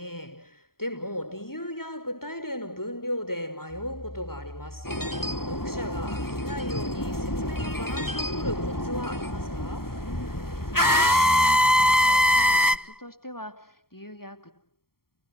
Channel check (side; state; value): right; late; 0.93 ms